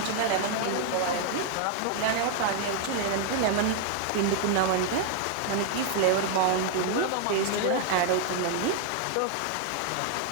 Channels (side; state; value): both; different; correlation 0.00